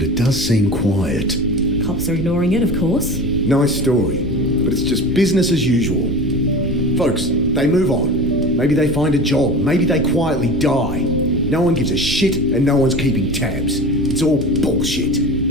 it does seem quiet. Cops are ignoring it, of course. Nice story, but it's just business as usual. Folks, they move on. Maybe they find a job. Maybe they quietly die. No one gives a shit and no one's keeping tabs. It's all bullshit.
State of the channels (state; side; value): normal; both; correlation 0.33